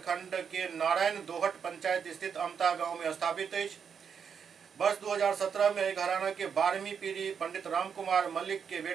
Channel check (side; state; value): left; quieter; 6.9 dB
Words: के नारायण दोहट पंचायत स्थित अमता गांव में स्थापित है। वर्ष 2017 में घराना के 12वीं पीढ़ी पंडित रामकुमार मल्लिक के